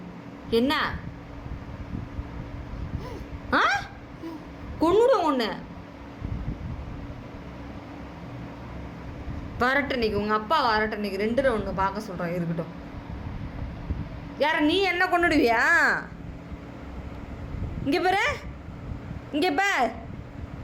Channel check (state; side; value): identical; both; correlation 1.00